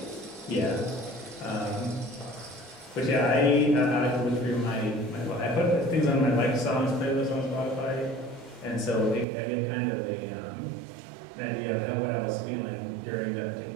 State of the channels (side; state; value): left; drops out; at 9.2 s